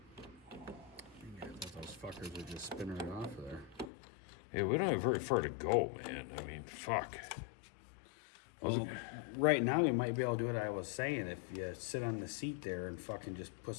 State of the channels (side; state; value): right; drops out; at 3.9 s